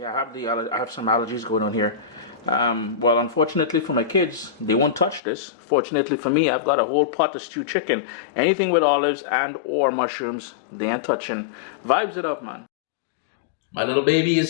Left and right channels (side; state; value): right; drops out; at 5.2 s